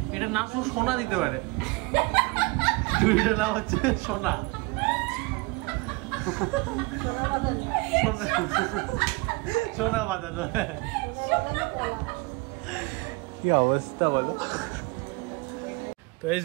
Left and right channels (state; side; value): quieter; left; 25.9 dB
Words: এটার নাম শুধু সোনা দিতে পারে, চুড়িটার নাম হচ্ছে সোনা। সোনা বাঁধানো। কি অবস্থা বলো। তো এস